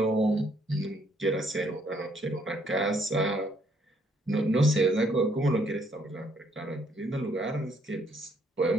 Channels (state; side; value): normal; both; correlation 0.68